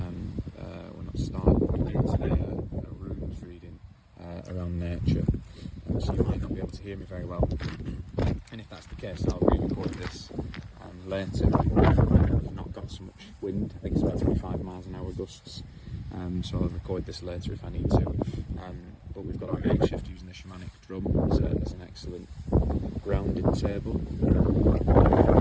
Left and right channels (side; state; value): both; identical; correlation 1.00